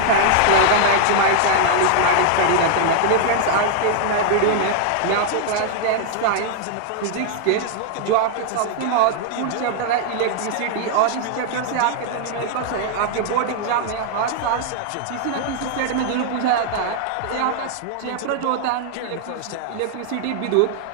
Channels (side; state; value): both; different; correlation -0.01